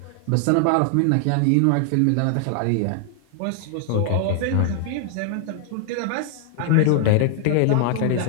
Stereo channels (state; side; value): different; both; correlation 0.00